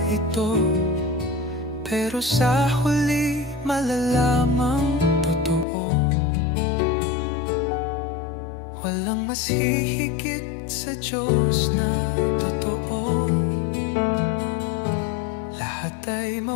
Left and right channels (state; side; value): drops out; right; at 5.7 s